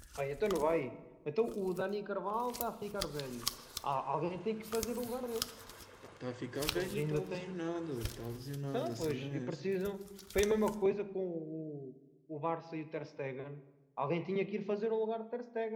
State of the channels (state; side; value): identical; both; correlation 1.00